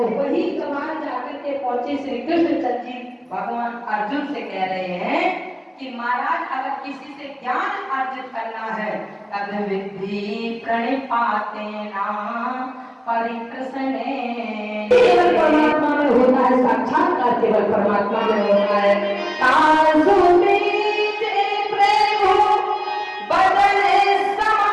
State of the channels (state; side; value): identical; both; correlation 1.00